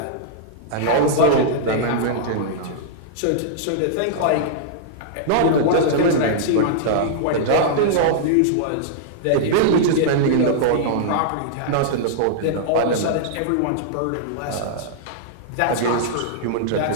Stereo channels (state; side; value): different; both; correlation -0.02